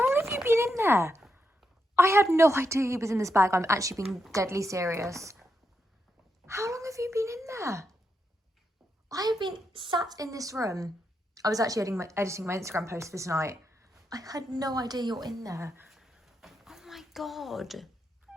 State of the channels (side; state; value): both; normal; correlation 0.83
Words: have you been in there? I had no idea he was in this bag. I'm actually being deadly serious. How long have you been in there? I have been sat in this room. I was actually editing my Instagram post this night. I had no idea you're in there. Oh my God.